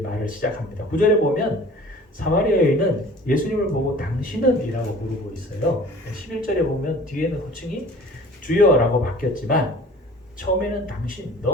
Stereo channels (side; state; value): both; normal; correlation 0.47